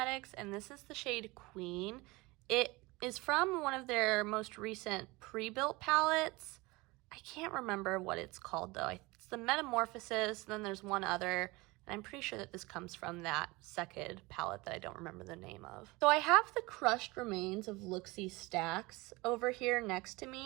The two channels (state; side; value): quieter; left; 23.1 dB